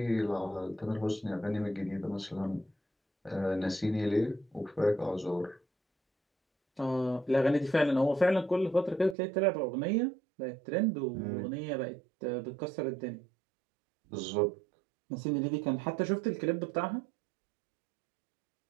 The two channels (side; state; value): left; drops out; at 9.2 s